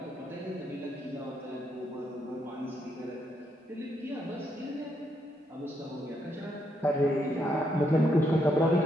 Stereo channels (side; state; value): both; normal; correlation 0.77